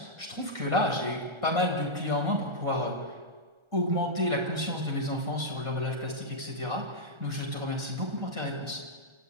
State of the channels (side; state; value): left; late; 1.3 ms